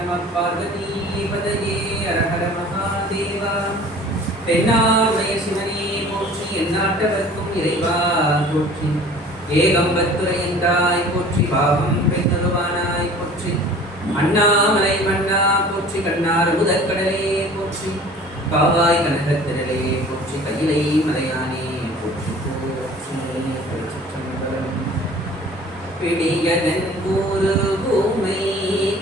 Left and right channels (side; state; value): both; normal; correlation 0.46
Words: பார்வதி பதயே ஹர ஹர மகாதேவா. தென்னார்மய சிவனே போற்றி, எந்நாட்டவர்க்கும் இறைவா போற்றி. ஏகம்பத்துரையந்தாய் போற்றி, பாவம் பெய்தருவானாய் போற்றி. அண்ணாமலை மன்னா போற்றி, கண்ணார் முதற்கடலே போற்றி. காவாய் கனகத்திரளே போற்றி, கையிலை மலையானே போற்றி போற்றி. திருச்சிற்றம்பலம். பிடியதன் கூறு பூமை